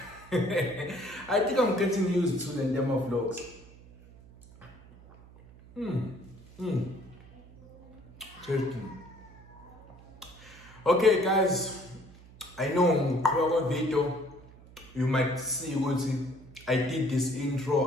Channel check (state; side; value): noise; right; hum, 22 dB below the sound